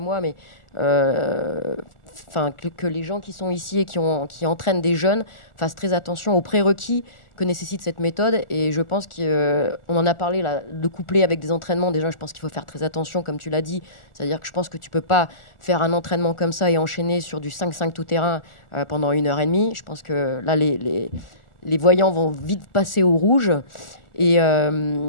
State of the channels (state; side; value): late; right; 1.4 ms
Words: mais que les gens qui sont ici et qui entraînent des jeunes fassent très attention aux prérequis que nécessite cette méthode. Et je pense qu'on en a parlé, là, de coupler avec des entraînements. Déjà, je pense qu'il faut faire très attention, comme tu l'as dit. C'est-à-dire que je pense que tu ne peux pas faire un entraînement comme ça et enchaîner sur du 5-5 tout-terrain pendant 1h30. Je pense que là, les voyants vont vite passer au rouge. Et